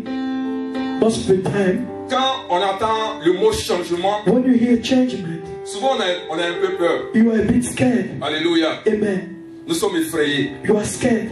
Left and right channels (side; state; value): both; identical; correlation 1.00